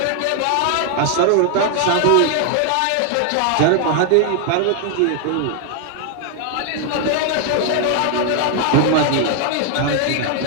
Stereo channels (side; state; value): both; different; correlation 0.00